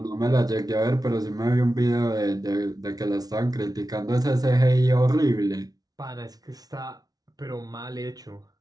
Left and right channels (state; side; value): late; left; 0.18 ms